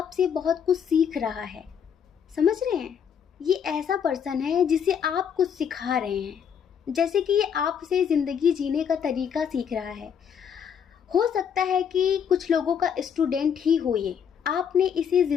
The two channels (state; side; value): quieter; right; 7.7 dB